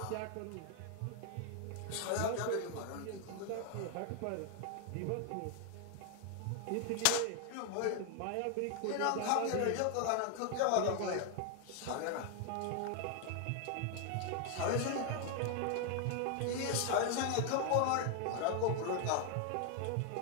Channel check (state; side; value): different; both; correlation 0.00